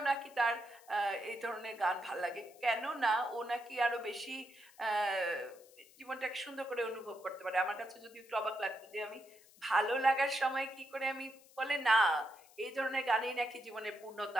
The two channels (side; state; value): left; noise; hiss, 25 dB below the sound